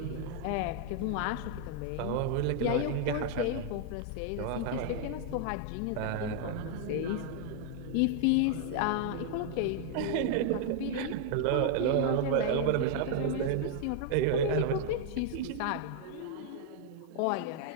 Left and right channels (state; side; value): different; both; correlation 0.00